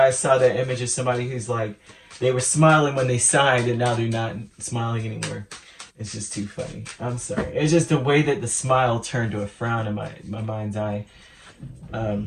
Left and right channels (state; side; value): identical; both; correlation 1.00